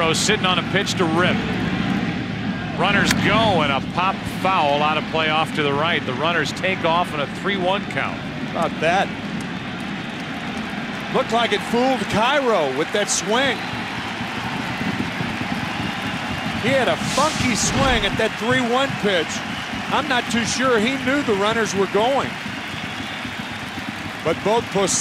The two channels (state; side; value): identical; both; correlation 1.00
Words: sitting on a pitch to rip. Runners go, and a pop foul out of play off to the right. The runners take off in a 3-1 count. About that. Looked like it fooled Cairo with that swing. He had a funky swing at that 3-1 pitch. I'm not too sure he knew the runners were going. But both